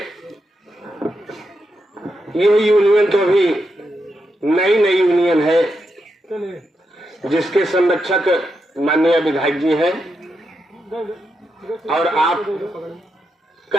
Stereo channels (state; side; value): normal; both; correlation 0.84